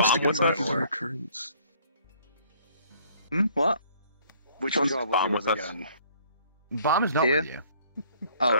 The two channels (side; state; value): both; inverted; correlation -0.59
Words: to be a yours? regular occurrence. What? Which one's god Bomb was with yours us? again? Bomb is not Here? with you. Oh,